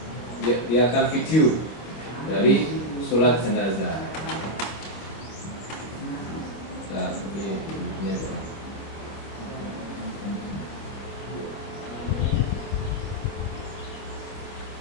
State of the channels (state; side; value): late; right; 25 ms